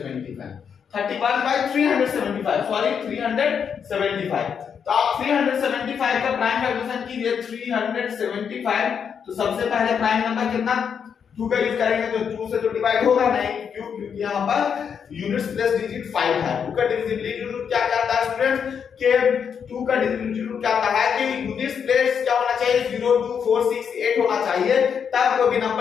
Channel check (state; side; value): quieter; right; 7.2 dB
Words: 31/375, सॉरी 375। तो आप 375 का प्राइम फैक्टराइजेशन कीजिए 375। तो सबसे पहले प्राइम नंबर कितना 2 का यूज करेंगे तो 2 से तो डिवाइड होगा नहीं, क्योंकि यहां पर यूनिट्स प्लस डिजिट 5 है। 2 का डिविजिबिलिटी रूल क्या कहता है स्टूडेंट्स के 2 का डिविजिबिलिटी रूल क्या कहता है कि यूनिट्स प्लस क्या होना चाहिए 0 2 4 6 8 होना चाहिए, तब कोई भी